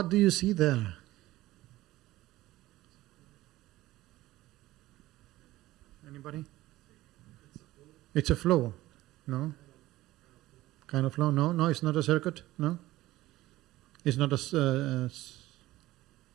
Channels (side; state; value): left; quieter; 16.9 dB